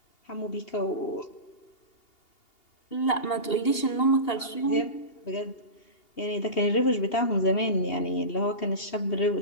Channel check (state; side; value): late; right; 2.8 ms